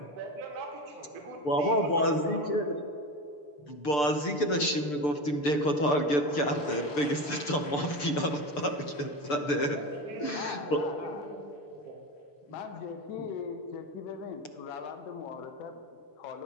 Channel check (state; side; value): late; right; 6.8 ms